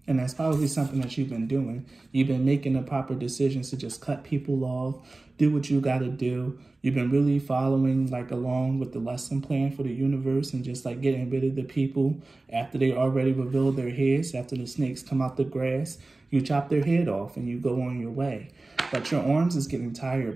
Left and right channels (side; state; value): left; quieter; 3.1 dB